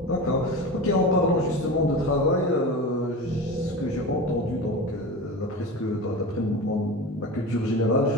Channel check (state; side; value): normal; both; correlation 0.29